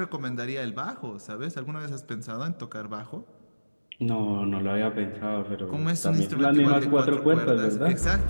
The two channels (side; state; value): both; inverted; correlation -1.00